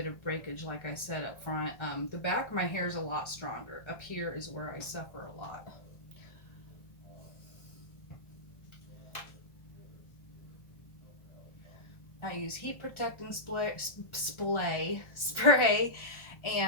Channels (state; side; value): late; right; 1.4 ms